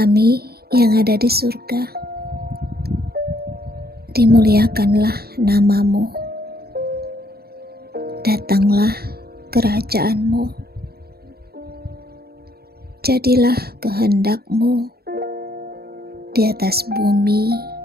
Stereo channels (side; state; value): left; late; 0.45 ms